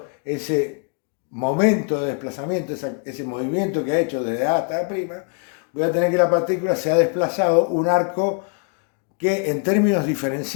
ese momento de desplazamiento, ese movimiento que ha hecho desde A hasta A', voy a tener que la partícula se ha desplazado un arco que en términos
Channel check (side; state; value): right; quieter; 39.4 dB